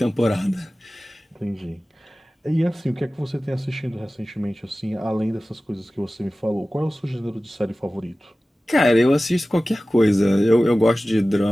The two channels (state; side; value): normal; both; correlation 0.96